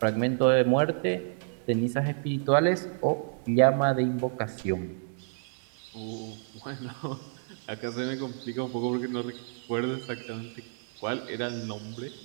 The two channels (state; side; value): silent; left; digital silence